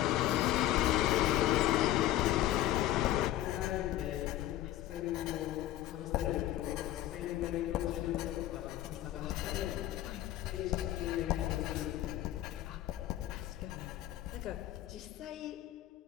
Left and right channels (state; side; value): quieter; right; 13.8 dB